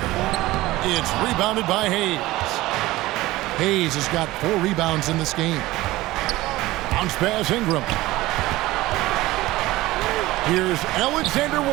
It's rebounded by Hayes. Hayes has got 4 rebounds in this game. Bounce pass Ingram. Here's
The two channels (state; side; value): quieter; left; 18.0 dB